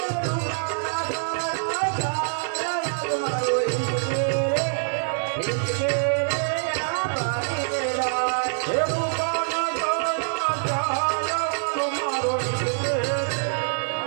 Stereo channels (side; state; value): left; silent; digital silence